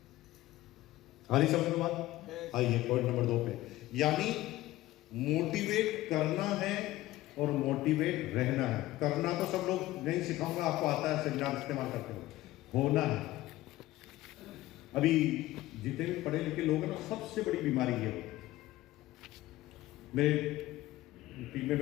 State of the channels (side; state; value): right; quieter; 16.6 dB